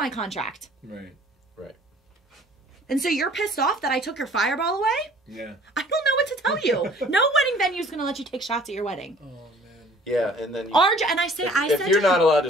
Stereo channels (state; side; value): normal; both; correlation 0.53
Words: contract. Right. And so you're pissed off that I took your fireball away? Yeah. I don't know what to tell you. No wedding venue is going to let you take shots at your wedding. Oh, man. Yeah, and then if you're not allowed to